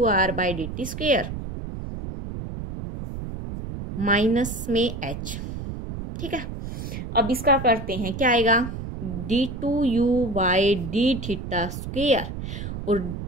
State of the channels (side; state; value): right; noise; rumble, 7 dB below the sound